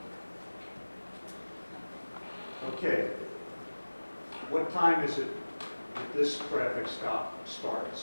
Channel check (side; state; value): both; inverted; correlation -1.00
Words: Okay. What time is it that this traffic stop